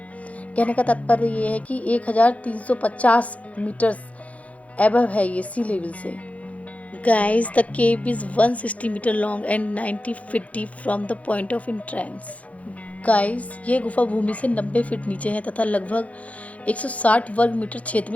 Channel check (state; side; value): late; right; 0.067 ms